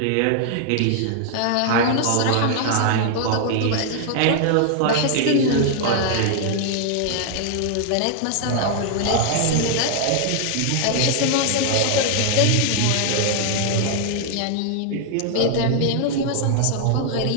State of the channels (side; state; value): both; different; correlation 0.00